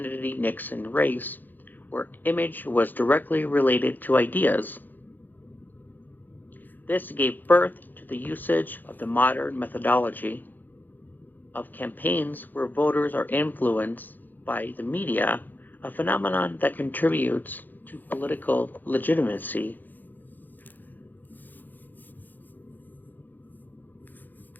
race, where image was directly related to ideas. This gave birth to the usage of the modern methodology of campaigns where voters are influenced by the media, a phenomenon that contributes to political legitimacy.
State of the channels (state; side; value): late; right; 0.087 ms